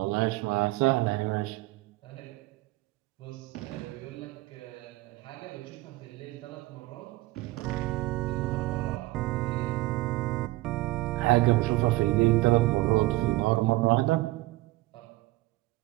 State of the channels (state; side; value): quieter; left; 19.4 dB